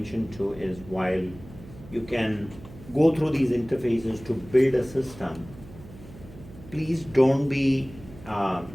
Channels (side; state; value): right; noise; hum, 18 dB below the sound